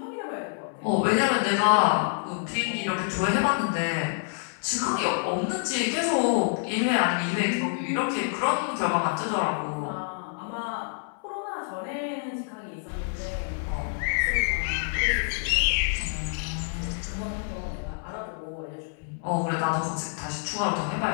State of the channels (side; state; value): right; silent; 60 dB below the other